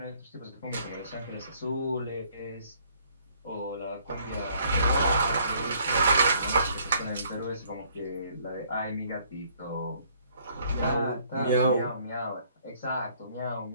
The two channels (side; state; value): both; inverted; correlation -0.63